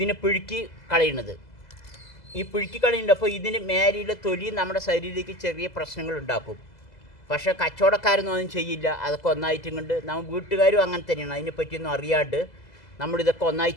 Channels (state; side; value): late; right; 2.0 ms